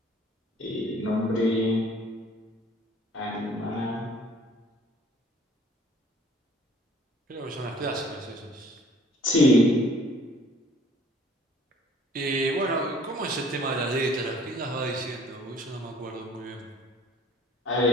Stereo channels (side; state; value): both; normal; correlation 0.55